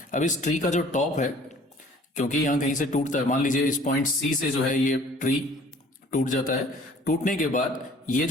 अब इस ट्री का जो टॉप है, क्योंकि यहां कहीं से टूटता है, मान लीजिए इस पॉइंट सी से जो है ये ट्री टूट जाता है. टूटने के बाद ये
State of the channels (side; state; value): both; normal; correlation 0.52